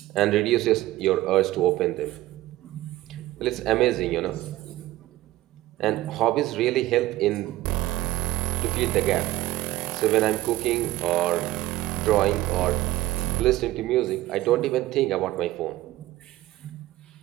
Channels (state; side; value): quieter; left; 16.4 dB